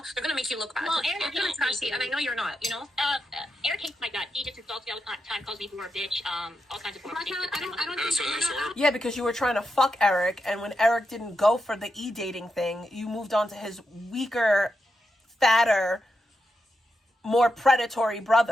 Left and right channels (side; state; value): both; normal; correlation 0.85